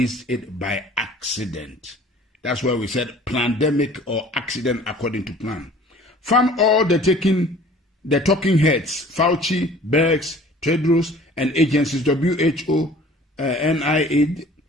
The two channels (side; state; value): both; normal; correlation 0.49